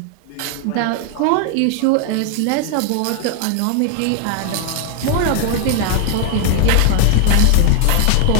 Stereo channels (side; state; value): both; different; correlation 0.00